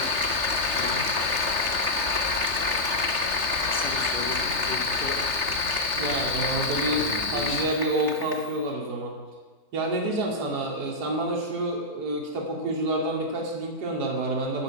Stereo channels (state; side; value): late; left; 3.3 ms